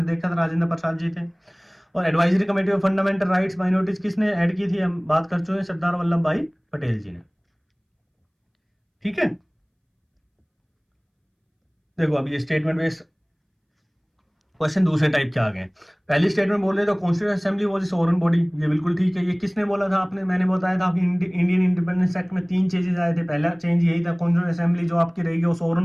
देखा था, राजेंद्र प्रसाद जी थे। और advisory committee of fundamental rights minorities किसने ऐड की थी, हम बात कर चुके हैं, सरदार वल्लभ भाई पटेल जी ने, ठीक है। देखो अब ये स्टेटमेंट बेस्ड क्वेश्चन दूसरे टाइप के आ गए। पहली स्टेटमेंट बोल रहे थे constitution assembly was sovereign body, ये बिल्कुल ठीक है। ये किसने बोला था आपने, मैंने बताया था आपकी इंडियन इंडिपेंडेंस एक्ट में 3 चेंजेस आए थे। पहला चेंज यही था कॉन्स्टिट्यूशन असेंबली जो आपकी रहेगी वो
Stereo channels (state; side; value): identical; both; correlation 1.00